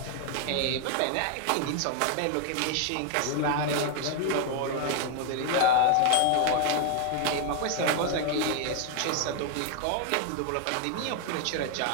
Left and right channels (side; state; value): both; different; correlation 0.01